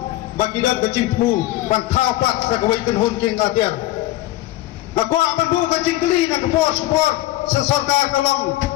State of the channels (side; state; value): right; quieter; 15.8 dB